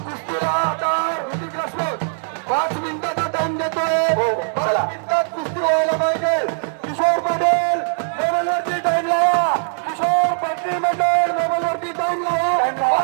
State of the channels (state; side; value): silent; left; digital silence